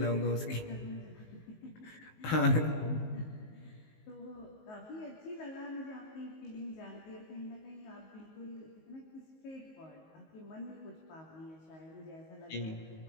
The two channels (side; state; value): right; late; 19 ms